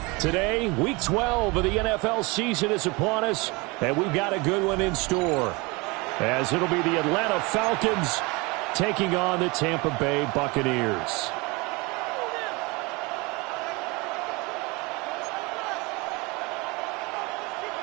Today, Week 12 of the NFL season is upon us, and we've got a good one in store, as it'll be the Atlanta Falcons taking on the Tampa Bay Buccaneers.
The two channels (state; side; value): quieter; left; 25.9 dB